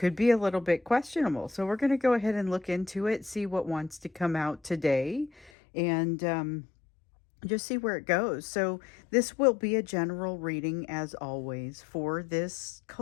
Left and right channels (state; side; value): drops out; right; at 5.5 s